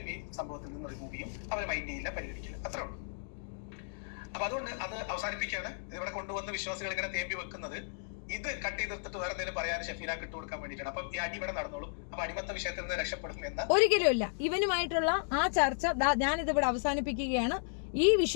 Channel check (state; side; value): silent; right; digital silence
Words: ഈ സംഭവത്തിൽ നിന്ന് റിമൂവ് ചെയ്യും, അവരെ മൈൻഡ് ചെയ്യില്ല, പരിഗണിക്കില്ല. അത്രേ ഉള്ളൂ. അപ്പൊ അതുകൊണ്ട് അത് അവസാനിപ്പിക്കാണ്. ഇവിടെ കൊണ്ടുവന്ന് വിശ്വാസികൾ ഇങ്ങനെ തേമ്പി വെക്കുന്നത് ഇത് കട്ട് ചെയ്തെടുത്തിട്ട് വേറെ എന്തെങ്കിലും പറയാൻ ഷെഫീന ഇട്ടുകൊടുക്കാൻ വേണ്ടിയിട്ടാണ്. അപ്പം ഈ അടി ഇവിടെ നടന്നോളൂ. അപ്പൊ അടിമത്ത വിഷയത്തിൽ നിന്ന് രക്ഷപ്പെടും എന്ന് ഒരിക്കലും ഇല്ല. ഇവനുമായിട്ടുള്ള ആ ചർച്ച ഞാനിത് ഇവിടെ അവസാനിപ്പിക്കുകയാണ്. ഈ